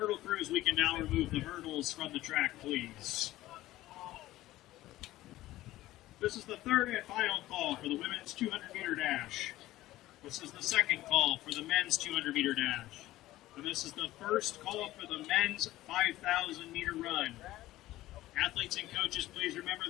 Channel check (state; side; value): quieter; right; 16.0 dB